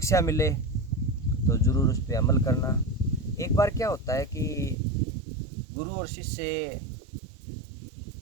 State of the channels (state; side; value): drops out; left; at 4.8 s